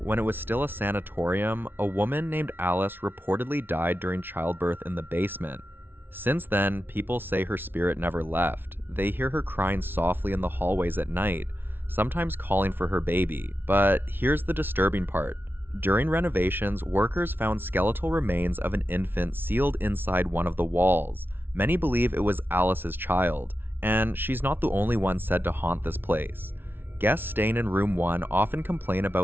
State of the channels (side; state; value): left; late; 0.10 ms